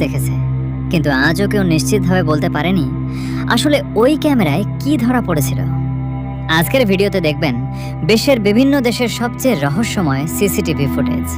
দেখেছে, কিন্তু আজও কেউ নিশ্চিতভাবে বলতে পারেনি আসলে ওই ক্যামেরায় কি ধরা পড়েছিল। আজকের ভিডিওতে দেখবেন বিশ্বের বিভিন্ন দেশের সবচেয়ে রহস্যময় সিসিটিভি ফুটেজ।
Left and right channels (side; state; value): both; identical; correlation 1.00